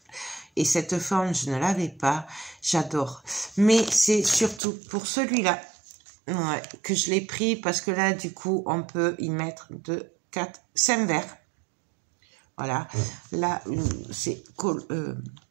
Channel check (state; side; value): drops out; left; at 4.6 s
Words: Et cette forme, je ne l'avais pas. J'adore. Mais c'est surtout pour celui-là que je l'ai pris. Parce que là, du coup, on peut y mettre 2, 4, 5 verres. Voilà. Là, c'est